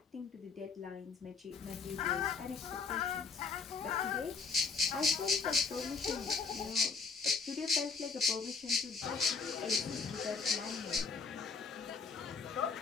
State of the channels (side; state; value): right; quieter; 4.9 dB